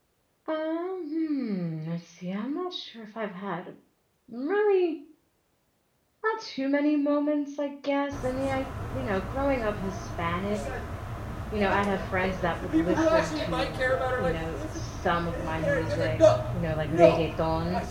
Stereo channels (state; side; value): identical; both; correlation 1.00